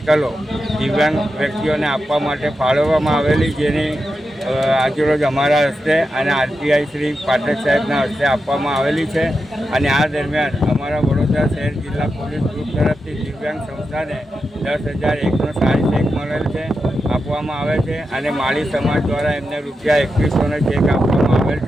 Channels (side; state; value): both; normal; correlation 0.89